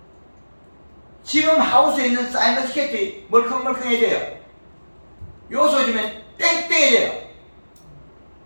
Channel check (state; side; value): inverted; both; correlation -1.00